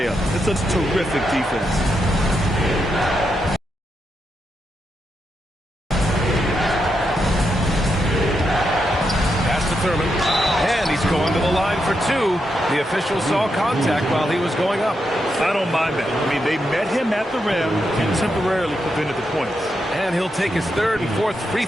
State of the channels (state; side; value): normal; both; correlation 0.83